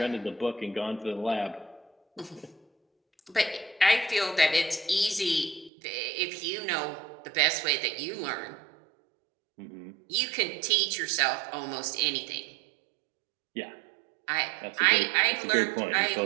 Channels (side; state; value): left; drops out; at 5.7 s